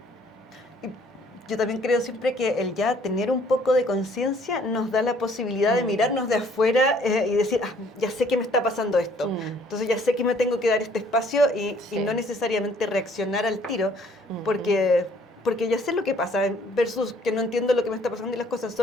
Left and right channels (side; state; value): both; normal; correlation 0.61